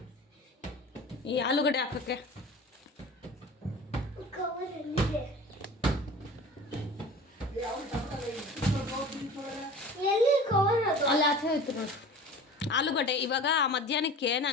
ಈ ಆಲೂಗಡ್ಡೆ ಹಾಕೋಕ್ಕೆ. ಅಲ್ಲ ಆಚೆ ಹೋಯ್ತು ನೋಡಿ ಆಲೂಗಡ್ಡೆ. ಇವಾಗ ಮಧ್ಯಾಹ್ನಕ್ಕೆ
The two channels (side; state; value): both; normal; correlation 0.39